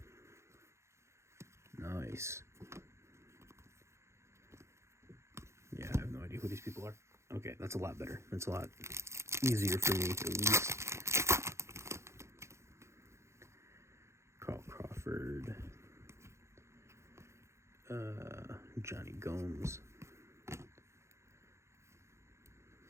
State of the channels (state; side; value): late; left; 0.13 ms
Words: Nice. Yeah, I have no idea who these people are. Okay, that's a lot better. That's a lot easier for me, at least. Carl Crawford. Johnny Gomes.